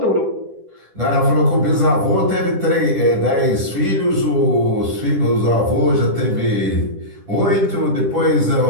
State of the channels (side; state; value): left; late; 10 ms